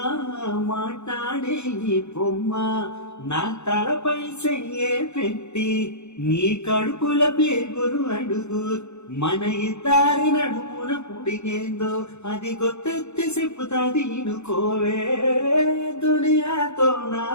మాట్లాడే ఈ బొమ్మ నా తలపై చెయ్యే పెట్టి నీ కడుపుల పేగురు అడుగు మన ఇద్దరి నడుమున పుడిగేందో అది గొత్తెత్తి చెప్పుతాది ఇనుకోవే దునియాతో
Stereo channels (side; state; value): right; late; 0.82 ms